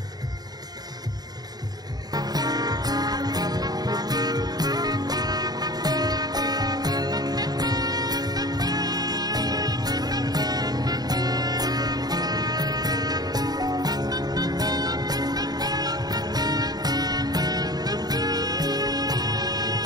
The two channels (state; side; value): late; left; 0.19 ms